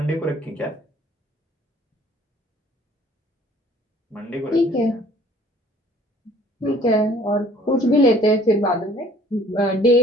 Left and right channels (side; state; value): both; normal; correlation 0.55